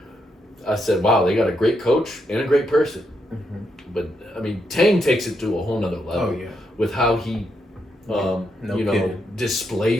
I said, wow, they got a great coach and a great person. But, Tang takes it to a whole nother level with how he,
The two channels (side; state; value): both; normal; correlation 0.80